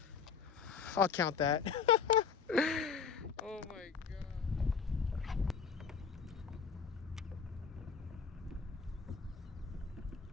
I'll count that. Oh my god.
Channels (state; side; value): quieter; right; 6.1 dB